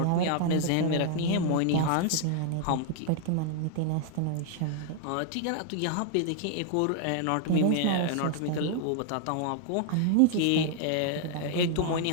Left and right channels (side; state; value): both; different; correlation 0.00